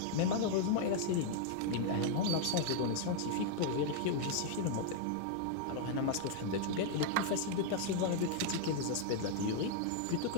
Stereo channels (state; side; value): different; both; correlation 0.00